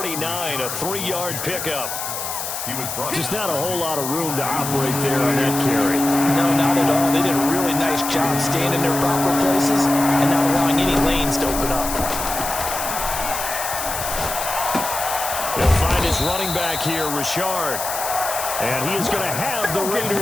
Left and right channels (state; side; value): noise; left; hiss, 5 dB below the sound